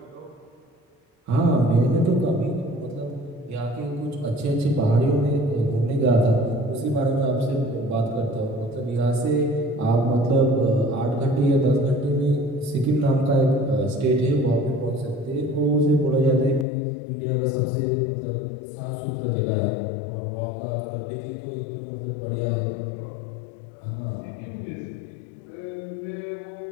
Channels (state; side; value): drops out; right; at 16.7 s